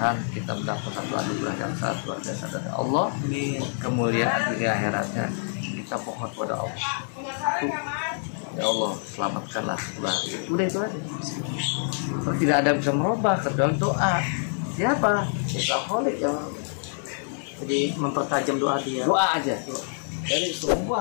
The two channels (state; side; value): silent; right; 61 dB below the other